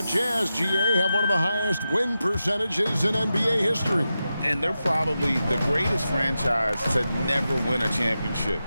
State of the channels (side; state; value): both; inverted; correlation -0.91